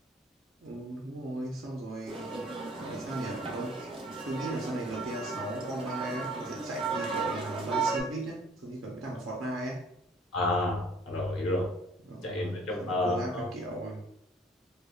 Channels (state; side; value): normal; both; correlation 0.55